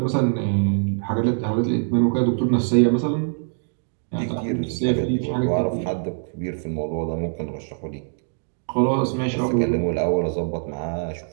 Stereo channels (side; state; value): left; silent; digital silence